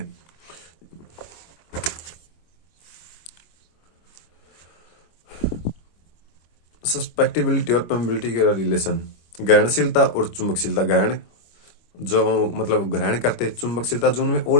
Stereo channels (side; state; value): right; late; 25 ms